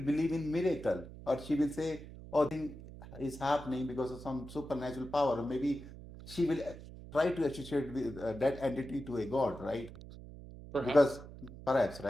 believe in miracle, or she will say, oh, thing is happening because of some supernatural power, or maybe she will try to associate with that entity to a god, right? Perhaps. Because perhaps,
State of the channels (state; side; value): noise; right; hum, 14 dB below the sound